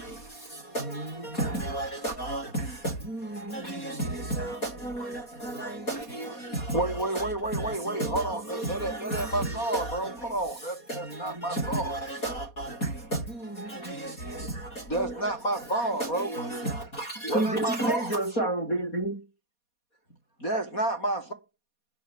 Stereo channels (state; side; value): late; right; 4.2 ms